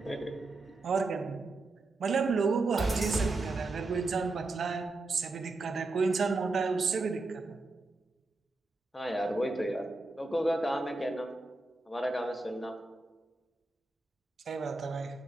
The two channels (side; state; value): left; quieter; 3.2 dB